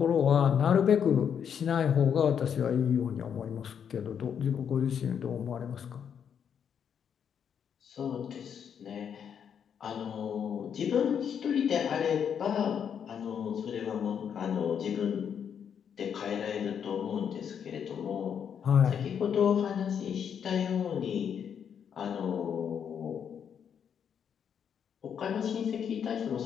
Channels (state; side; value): quieter; right; 7.9 dB